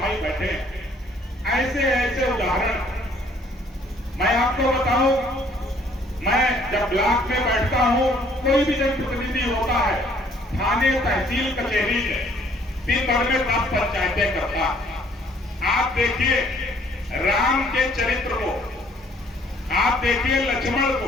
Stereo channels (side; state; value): both; normal; correlation 0.61